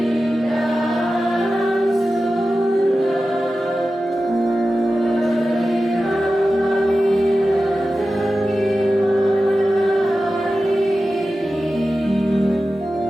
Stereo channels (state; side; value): normal; both; correlation 0.93